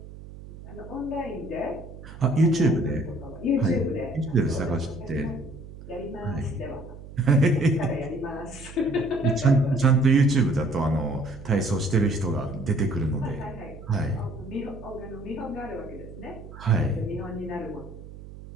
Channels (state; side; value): noise; right; hum, 15 dB below the sound